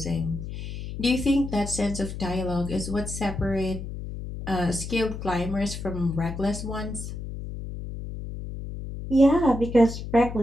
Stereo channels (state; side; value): noise; left; hum, 8 dB below the sound